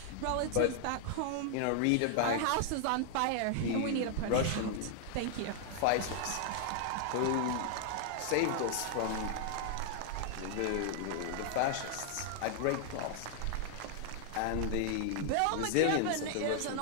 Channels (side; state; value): both; different; correlation 0.00